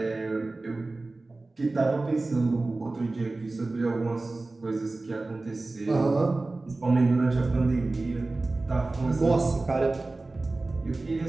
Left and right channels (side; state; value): left; quieter; 3.2 dB